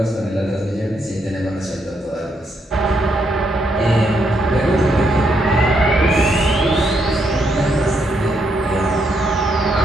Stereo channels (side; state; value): both; normal; correlation 0.77